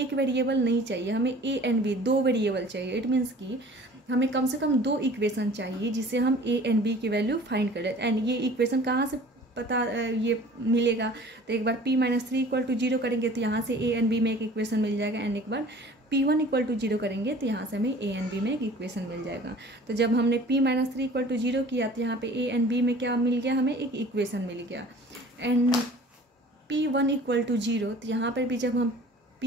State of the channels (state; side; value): normal; both; correlation 0.47